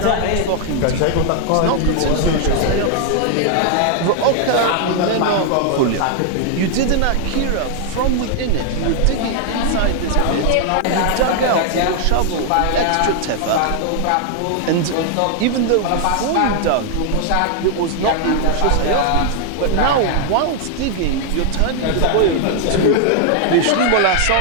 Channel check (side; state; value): both; different; correlation 0.00